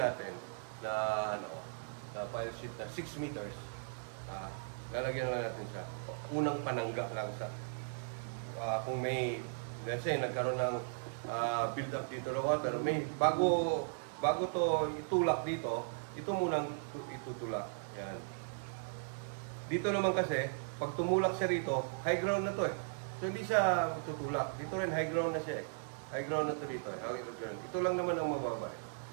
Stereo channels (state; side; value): silent; left; digital silence